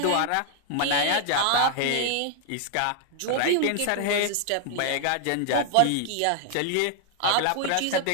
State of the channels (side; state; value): both; different; correlation 0.00